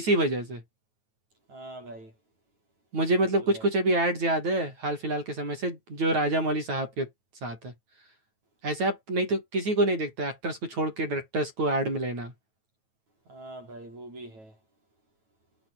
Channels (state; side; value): late; left; 9.2 ms